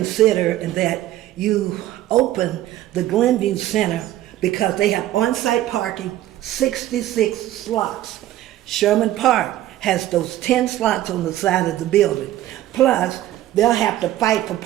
and that you open the Glenview Center, because they have on-site parking, 66 slots. Sherman Park has those 10 slots on the side of the building. Plus, they'll have to fight for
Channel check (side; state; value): left; quieter; 13.9 dB